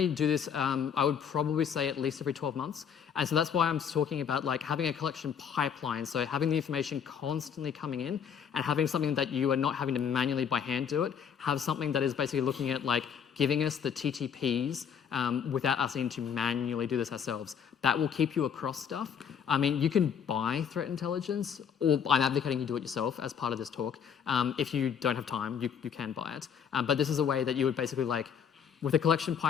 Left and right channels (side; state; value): right; quieter; 7.7 dB